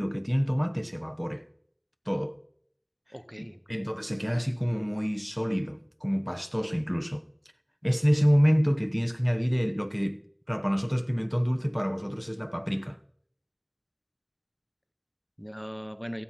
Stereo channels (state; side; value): identical; both; correlation 1.00